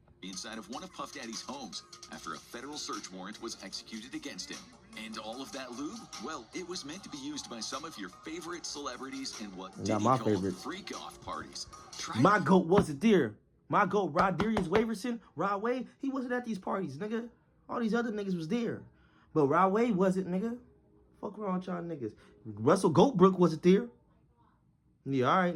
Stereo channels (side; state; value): both; identical; correlation 1.00